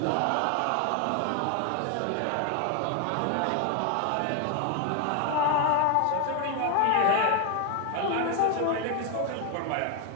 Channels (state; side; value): different; both; correlation 0.01